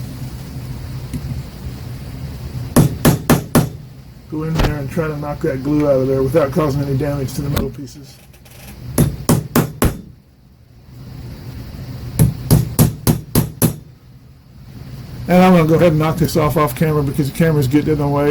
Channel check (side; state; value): both; identical; correlation 1.00